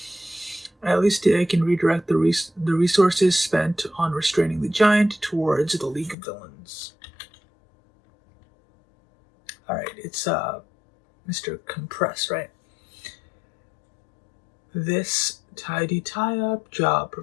At least I can redirect the resources spent on restraining the giant towards the League of Villains. Alright, it's Mr. Compress, right? This tidy tie-up job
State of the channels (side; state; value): right; drops out; at 6.2 s